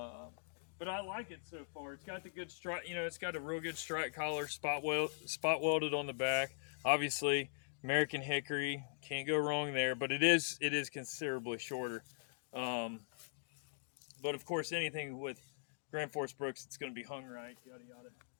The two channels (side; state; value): right; silent; digital silence